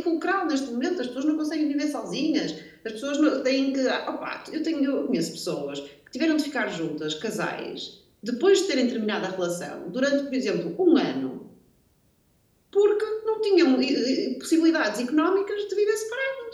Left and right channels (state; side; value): identical; both; correlation 1.00